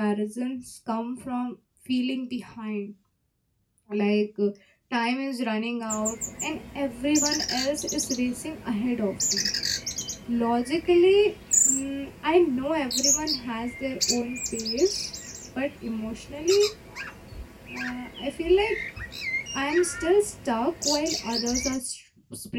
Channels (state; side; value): identical; both; correlation 1.00